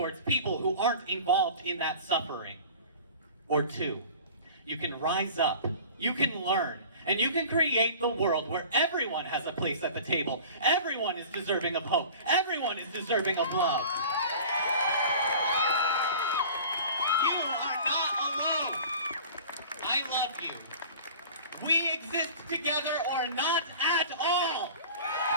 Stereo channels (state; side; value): inverted; both; correlation -0.42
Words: people who aren't involved in that suffering. Or two, you can rise up, you can learn, and you can create the world where everyone has a place at the table. Everyone is deserving of hope. Everyone is deserving of love. You are not alone. I love you. We exist together or not at all.